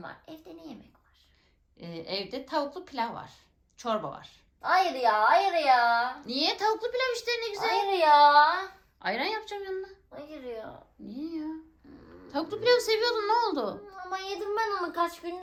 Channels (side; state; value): both; identical; correlation 1.00